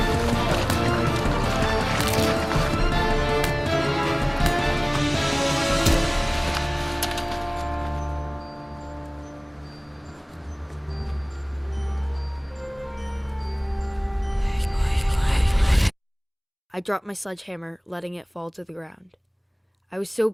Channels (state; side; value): identical; both; correlation 1.00